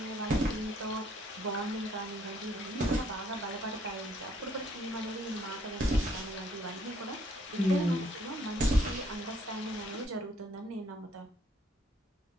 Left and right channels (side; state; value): both; normal; correlation 0.66